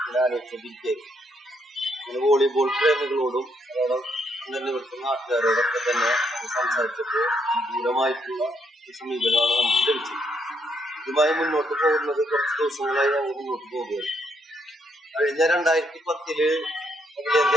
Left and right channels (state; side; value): normal; both; correlation 0.74